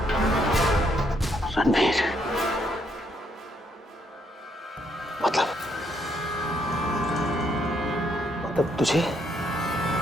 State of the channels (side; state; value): both; normal; correlation 0.73